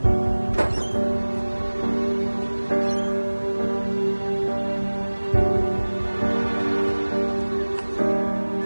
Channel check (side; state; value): both; inverted; correlation -1.00